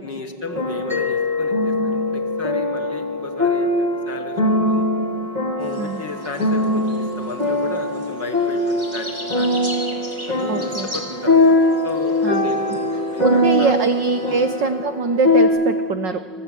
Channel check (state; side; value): late; left; 5.4 ms